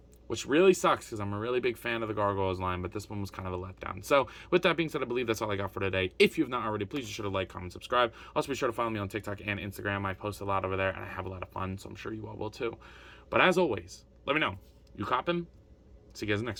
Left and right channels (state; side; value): identical; both; correlation 1.00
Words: Which really sucks, because I'm a really big fan of the Gargoyles line, but this one was kind of a letdown. So with that being said, I believe that's all I got for today. If you have not already, please be sure to like, comment, subscribe. Also be sure to follow me on TikTok and Instagram. I post a lot over there, and I have a lot of fun, so I'm sure you all will too. But as always, let me know. You coppin'? See you guys in the